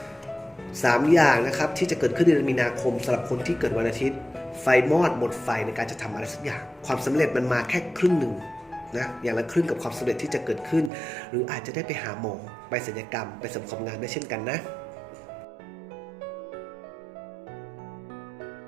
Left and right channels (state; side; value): drops out; left; at 10.9 s